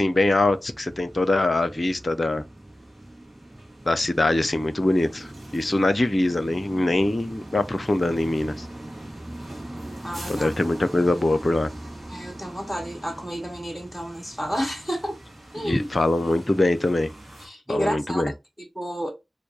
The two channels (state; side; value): normal; both; correlation 0.95